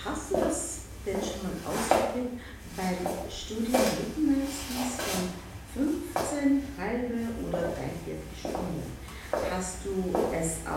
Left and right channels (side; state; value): both; identical; correlation 1.00